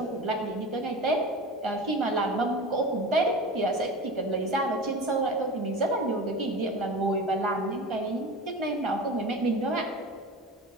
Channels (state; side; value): normal; both; correlation 0.31